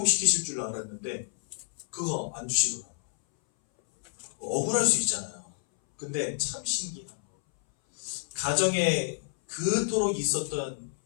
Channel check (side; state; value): right; silent; 58 dB below the other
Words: 줄 알았는데 그거 안 주시더라고요. 억울할 수 있잖아요. 근데 참 신기한 거. 가정에 그토록 있었던